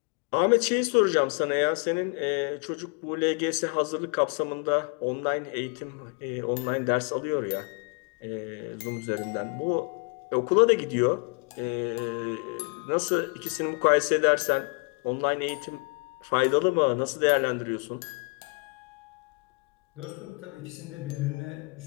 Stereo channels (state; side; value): quieter; right; 33.3 dB